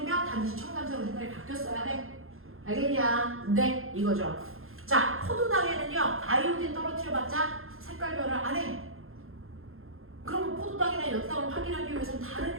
반드시 청량색으로 색깔이 바뀌었어야 돼. 알겠냐? 네, 이거죠. 자, 포도당에는요, 아이오딘 떨어뜨려봤자 색깔 변화 안 해. 그럼 포도당이나 엽당을 확인하기 위해서는 다른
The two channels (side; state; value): left; late; 0.61 ms